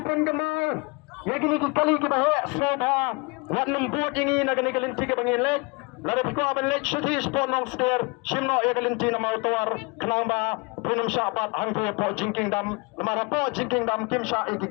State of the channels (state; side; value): quieter; right; 28.6 dB